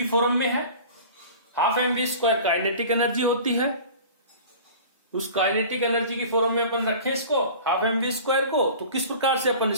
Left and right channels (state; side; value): inverted; both; correlation -0.40